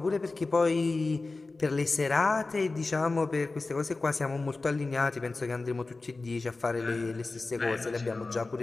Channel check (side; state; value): right; quieter; 3.5 dB